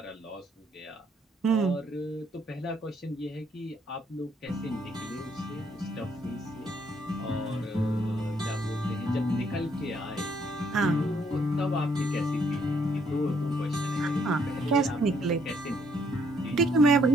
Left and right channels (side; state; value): both; normal; correlation 0.68